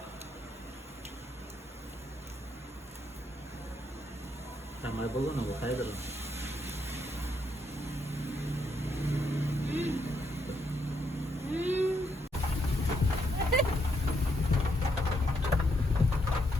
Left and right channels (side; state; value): both; normal; correlation 0.77